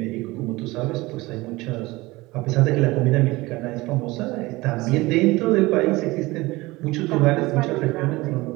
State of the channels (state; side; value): quieter; left; 21.0 dB